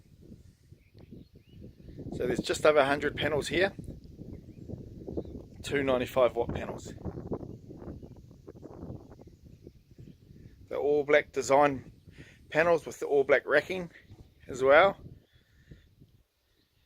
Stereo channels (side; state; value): both; identical; correlation 1.00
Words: So there's just over 100 panels here, 295 watt panels. The all black design panels with the all black racking as well.